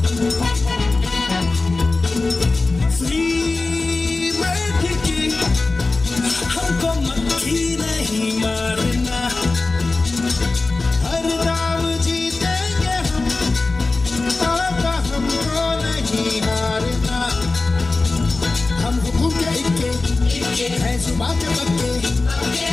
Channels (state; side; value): quieter; right; 3.5 dB